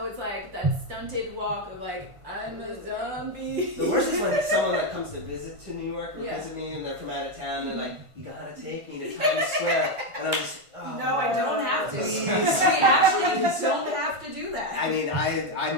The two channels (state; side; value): late; left; 1.5 ms